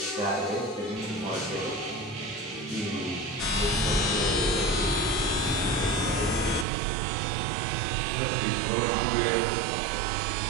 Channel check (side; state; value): left; drops out; at 6.7 s